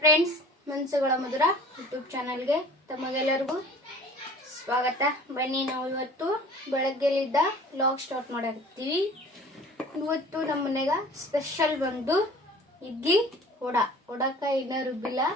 friends, ಮನಸ್ಸುಗಳ ಮಧುರ YouTube ಚಾನಲ್ಗೆ ತಮಗೆಲ್ಲರಿಗೂ ಸ್ವಾಗತ. ಬನ್ನಿ, ನಾವು ಇವತ್ತು ಬೆಳಗ್ಗೆಲಿದ್ದ ವ್ಲಾಗ್ ಸ್ಟಾರ್ಟ್ ಮಾಡಾಕತ್ತೀವಿ. ಇವತ್ತು ನಮ್ಮ ಮನೆಗೆ ಸ್ಪೆಷಲ್ ಬಂದು ಇಡ್ಲಿ ಒಡಕ ಇನ್ನೂ ರುಬ್ಬಿಲ್ಲ.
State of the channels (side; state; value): both; normal; correlation 0.46